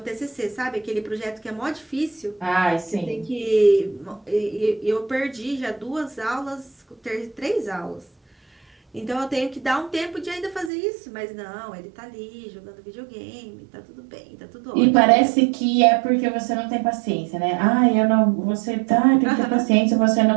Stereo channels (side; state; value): left; drops out; at 10.7 s